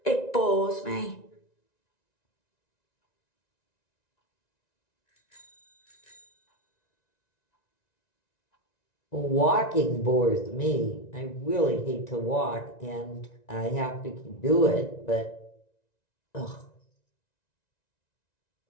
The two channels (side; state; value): right; late; 1.9 ms